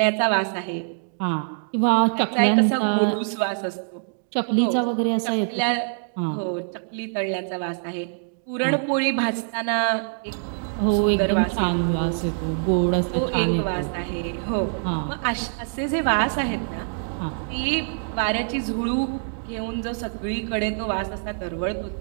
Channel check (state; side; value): silent; left; digital silence